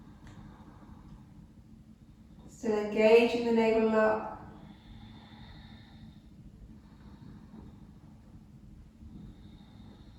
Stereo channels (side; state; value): both; identical; correlation 1.00